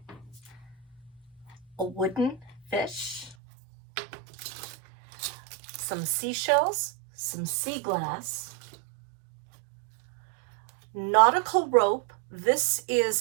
a wooden fish, some seashells, some sea glass, nautical rope. This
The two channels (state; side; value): drops out; left; at 3.4 s